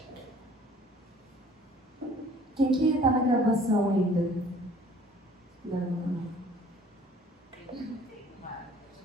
Quem que está na graduação ainda? Não.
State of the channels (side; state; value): both; normal; correlation 0.53